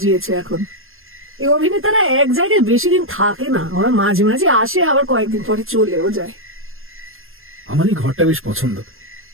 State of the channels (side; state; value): left; late; 0.60 ms